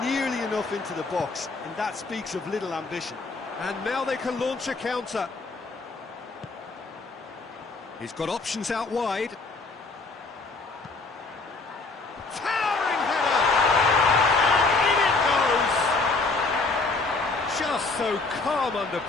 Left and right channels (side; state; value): right; quieter; 3.8 dB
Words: nearly enough into the box, and that speaks of little ambition. And now they can launch a counter. He's got options out wide. Towering header! And in it goes! Just so calm under